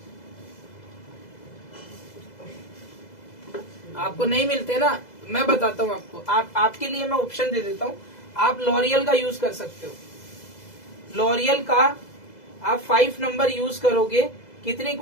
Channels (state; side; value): late; right; 2.0 ms